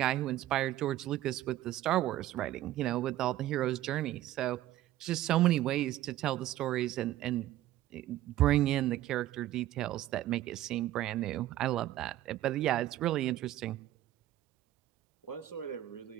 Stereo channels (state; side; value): quieter; left; 14.3 dB